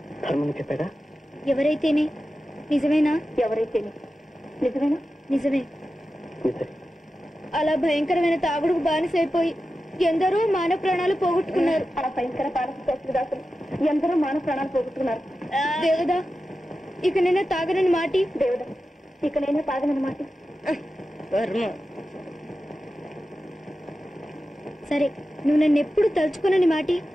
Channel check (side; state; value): both; normal; correlation 0.92